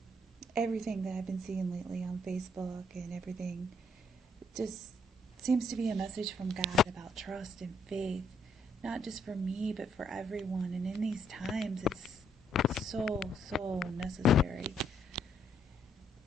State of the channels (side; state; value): both; normal; correlation 0.71